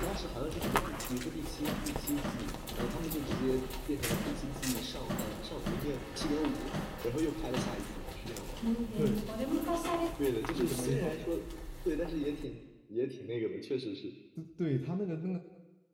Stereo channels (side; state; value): both; identical; correlation 1.00